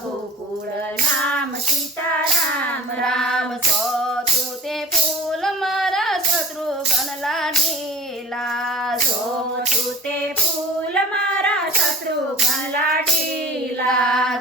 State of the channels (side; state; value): both; normal; correlation 0.42